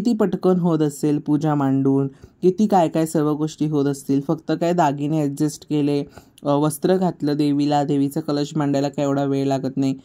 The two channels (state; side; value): identical; both; correlation 1.00